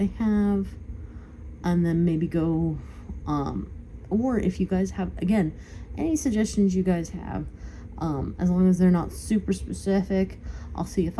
have and then maybe go or if you guys have, again, any suggestions you guys have, as long as they're not super specific, I'll see if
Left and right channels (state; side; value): identical; both; correlation 1.00